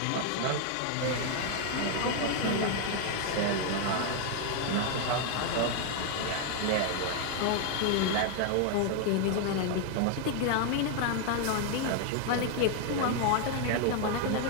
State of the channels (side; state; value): both; different; correlation 0.00